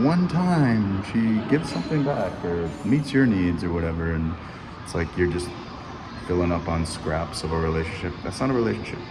one time she gives something back or meets your needs or whatever, and it's like you're just filling up on scraps of a relationship. That's not a relationship.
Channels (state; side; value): identical; both; correlation 1.00